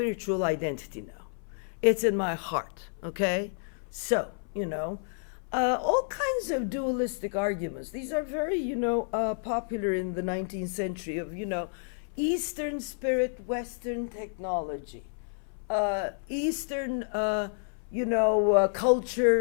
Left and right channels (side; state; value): right; silent; 58 dB below the other